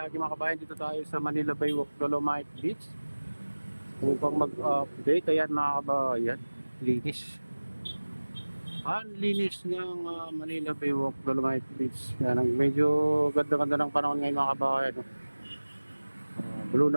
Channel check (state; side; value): inverted; both; correlation -1.00